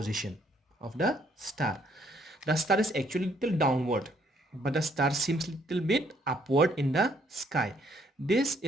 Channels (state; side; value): normal; both; correlation 0.67